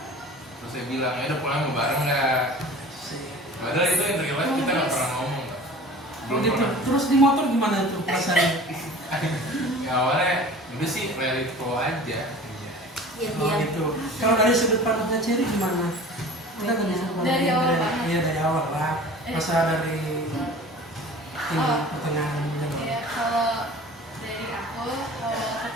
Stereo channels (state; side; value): normal; both; correlation 0.42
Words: Terus saya bilang ya udah pulang mau bareng nggak? Padahal itu yang terlihat kita nggak pernah ngomong. Belum Gitu. pernah. Terus di motor gimana itu perasaannya? Ya awalnya udah sih reality flow aja. Iya, Oh gitu. Kalau dari sudut pandangnya Cherry gimana? Kita kan Dari awal banget. Iya, dari awal lah. Masa dari pertengahan. Ya, kalau dari aku, kalau